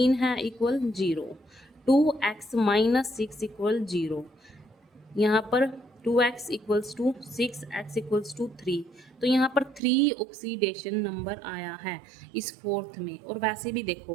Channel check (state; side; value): drops out; left; at 9.8 s